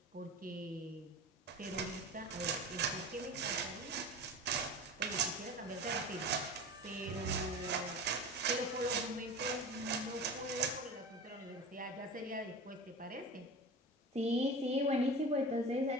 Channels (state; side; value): normal; both; correlation 0.32